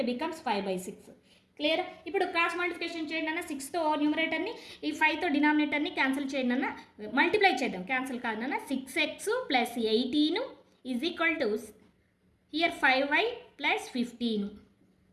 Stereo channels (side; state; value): both; identical; correlation 1.00